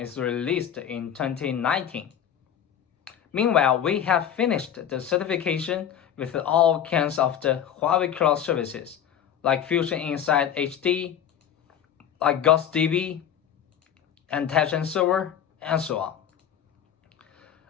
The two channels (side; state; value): right; quieter; 9.3 dB